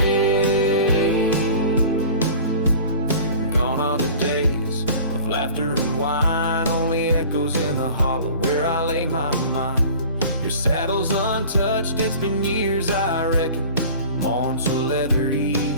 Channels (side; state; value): both; inverted; correlation -0.43